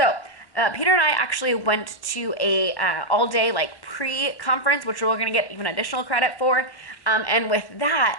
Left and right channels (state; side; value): late; right; 1.0 ms